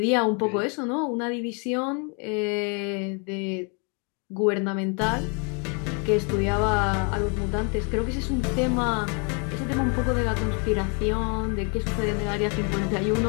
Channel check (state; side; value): quieter; right; 36.5 dB